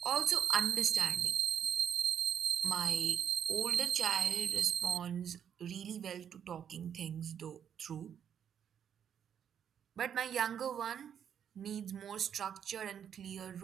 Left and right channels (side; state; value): left; quieter; 8.6 dB